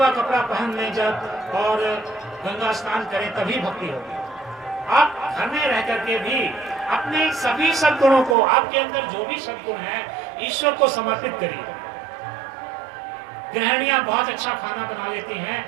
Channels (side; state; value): left; drops out; at 8.3 s